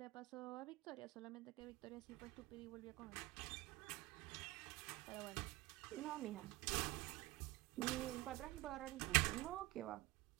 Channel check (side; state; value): left; quieter; 19.6 dB